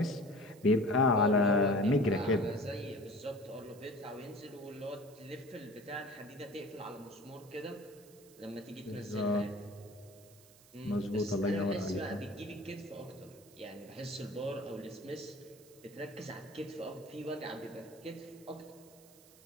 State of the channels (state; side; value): noise; right; hiss, 24 dB below the sound